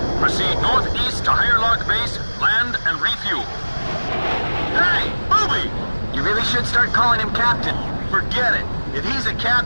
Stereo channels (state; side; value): inverted; both; correlation -1.00